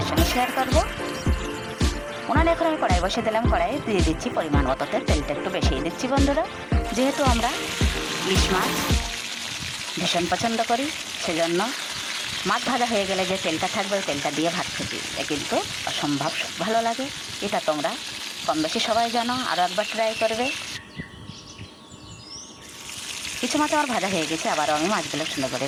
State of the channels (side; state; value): both; identical; correlation 1.00